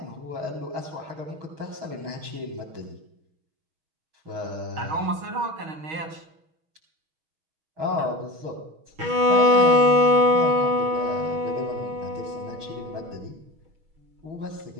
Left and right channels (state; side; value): late; left; 6.3 ms